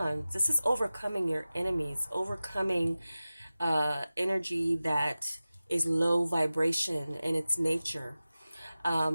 This is overcoming your enemies, overcoming energy that is low vibration in its nature.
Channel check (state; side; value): inverted; both; correlation -0.96